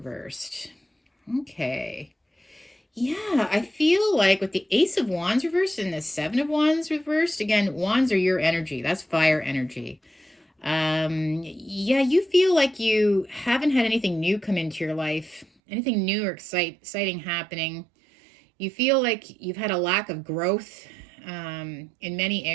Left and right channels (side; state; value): left; drops out; at 15.5 s